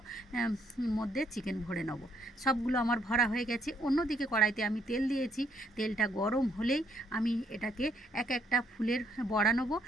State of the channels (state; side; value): normal; both; correlation 0.70